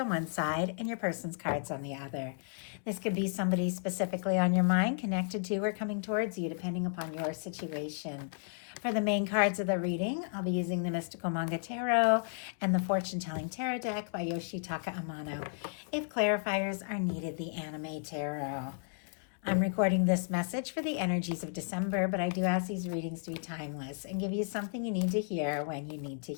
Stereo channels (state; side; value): silent; right; digital silence